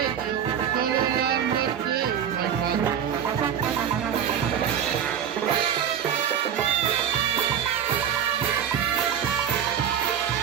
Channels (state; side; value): quieter; left; 8.8 dB